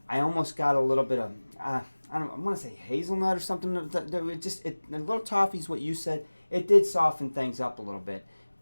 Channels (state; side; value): inverted; both; correlation -1.00